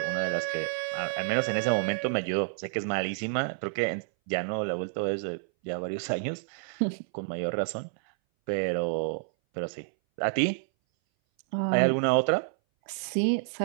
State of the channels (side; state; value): left; silent; 58 dB below the other